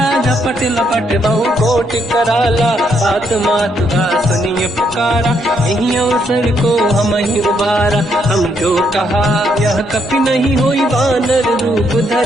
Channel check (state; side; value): normal; both; correlation 0.74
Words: झपट लपट बहु कोट कराला। बात मात का सुनिए पुकारा यही अवसर को हम ही उबारा। हम जो कहा यह कपि नहीं होई वानर रूप